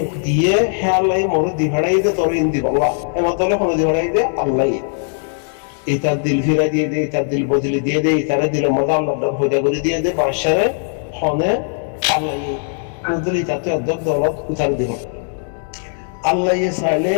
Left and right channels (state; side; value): silent; right; 67 dB below the other